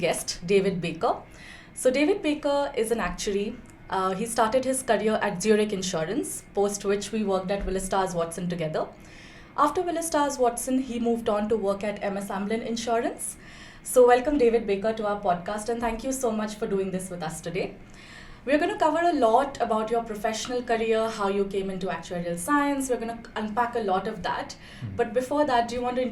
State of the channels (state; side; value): identical; both; correlation 1.00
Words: David Baker. So David Baker is an actuary. He started his career at Zurich Insurance, post which we worked at Willis Towers Watson together. After Willis Towers Watson, he moved on to work at MS Amlin Insurance. So welcome David Baker to our podcast, and thank you so much for doing this with us today. We're going to cover a lot about your professional career, how you came into actuarial science. We're going to unpack a lot of that. But before that, do you want to